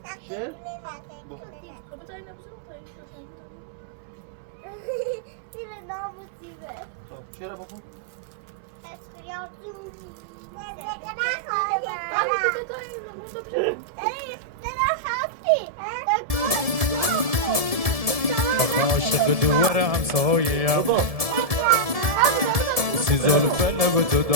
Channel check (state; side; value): late; left; 1.7 ms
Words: شعر؟ خب چرا بخون؟ عاشق دوار همسایه‌ام بابا سی زلفه لب تو